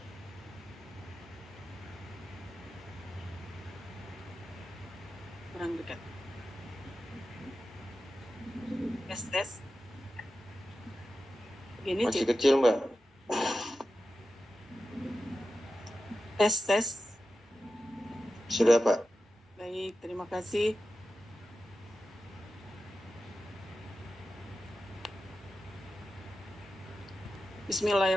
Kurang dekat. Tes. Begini, masih kecil, Mbak. Tes. Sudah, Pak. Baik, terima kasih.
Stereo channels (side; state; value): both; normal; correlation 0.93